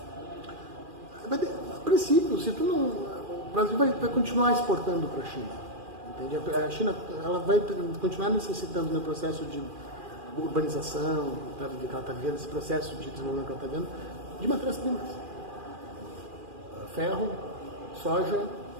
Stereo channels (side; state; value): left; late; 2.4 ms